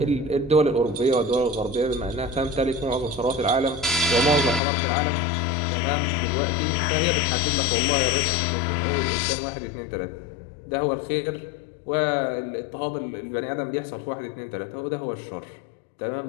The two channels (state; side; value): drops out; right; at 4.6 s